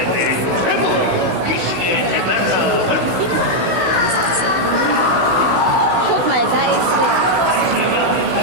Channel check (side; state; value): left; late; 16 ms